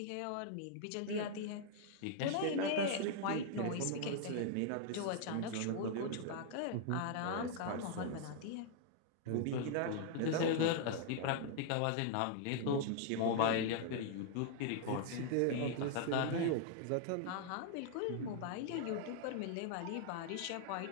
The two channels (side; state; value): both; different; correlation -0.01